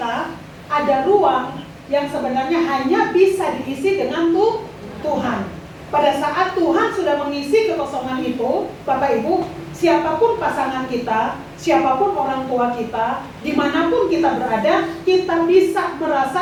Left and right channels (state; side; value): identical; both; correlation 1.00